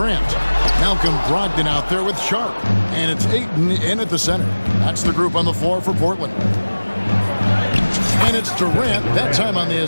Malcolm Brogdon out there with Sharp. And it's Ayton in at the center. That's the group on the floor for Portland. And it's Durant, that time on the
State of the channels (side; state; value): both; inverted; correlation -1.00